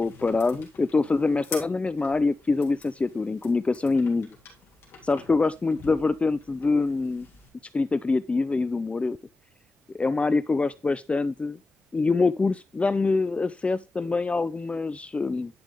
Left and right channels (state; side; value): quieter; right; 3.3 dB